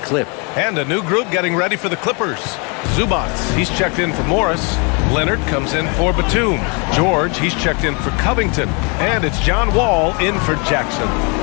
And a new group getting ready for the Clippers. Zubats, he's checked in for Morris. Leonard comes in for Batum. George, he's checked in for Covington. And it's John Wall in for Jackson.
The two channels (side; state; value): right; quieter; 33.5 dB